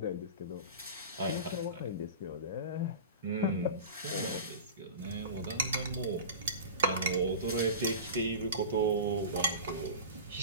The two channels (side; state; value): both; inverted; correlation -0.32